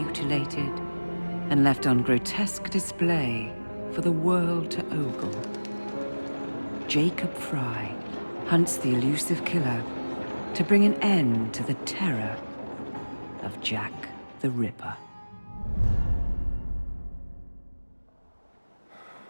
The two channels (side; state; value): both; inverted; correlation -1.00